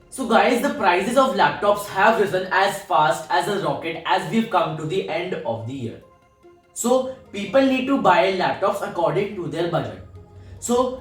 So guys, the prices of laptops have risen as fast as a rocket as we've come to the end of the year. So people need to buy laptops according to their budget.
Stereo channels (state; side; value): identical; both; correlation 1.00